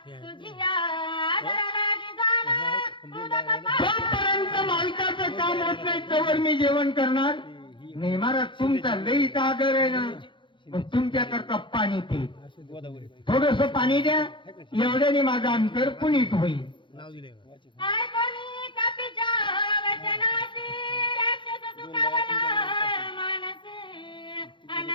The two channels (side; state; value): right; late; 0.23 ms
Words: तुझी आदर लागी जाणं उदक पाहणं. जोपर्यंत मालकाचं काम होत नाही तोवर मी जेवण करणार नाही. महाराज तुमचा लईचा आदर आहे ना, पण तुमच्याकरता पाणी पे, थोडस पाणी द्या, एवढ्याने माझं अंतर पुनीत होईल. काय कोणी कपीच्या वचनाची राक्षस सुखावला मानसी,